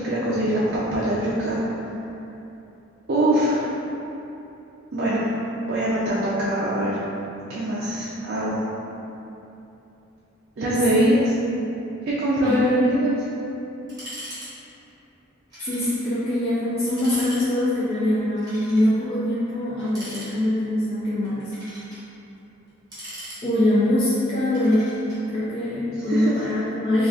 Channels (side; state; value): both; normal; correlation 0.60